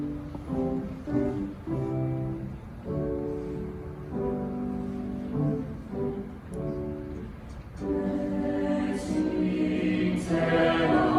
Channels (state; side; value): identical; both; correlation 1.00